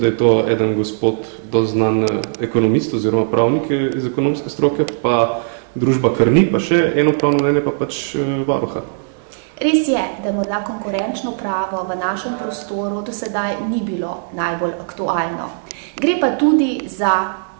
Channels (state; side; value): silent; left; digital silence